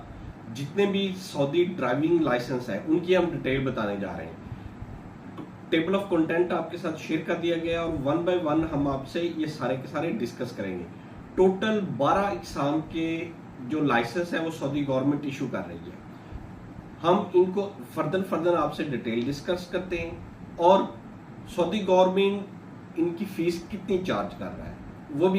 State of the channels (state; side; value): identical; both; correlation 1.00